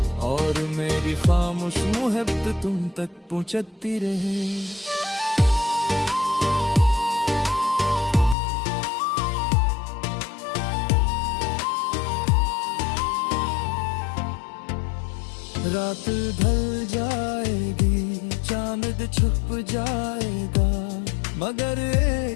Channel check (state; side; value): drops out; right; at 8.3 s